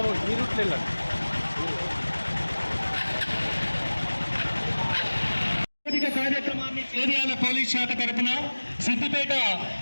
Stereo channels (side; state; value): both; inverted; correlation -1.00